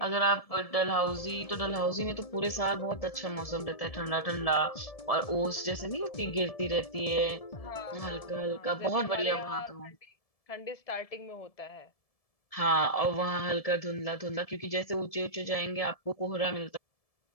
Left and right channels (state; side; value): late; right; 1.7 ms